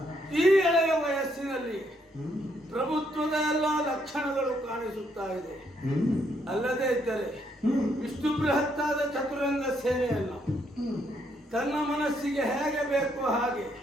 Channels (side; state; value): both; normal; correlation 0.73